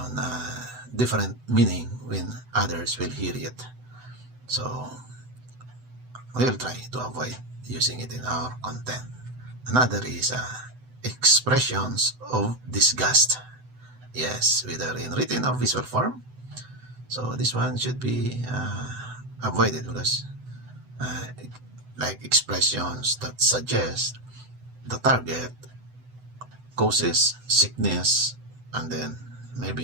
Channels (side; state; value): left; late; 7.9 ms